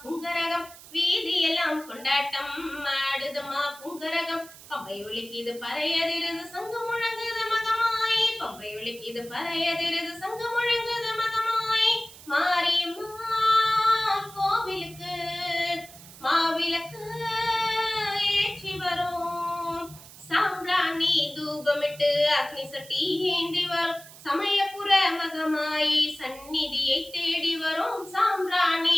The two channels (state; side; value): noise; right; hiss, 18 dB below the sound